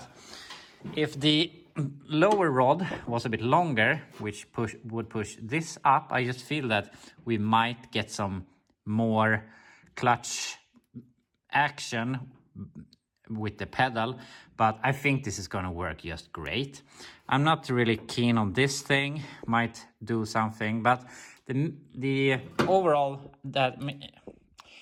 if the lower rod was a bit longer, which would push this up, I just feel that we might get some more clutch action with the pedal, but I think this is gonna work just great. I'm not really keen on this thing, might do something, but the overall, that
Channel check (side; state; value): both; identical; correlation 1.00